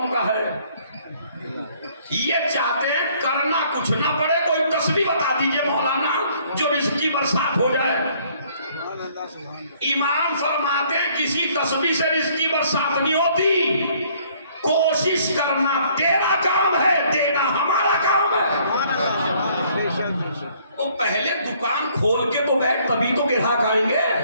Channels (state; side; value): inverted; both; correlation -0.62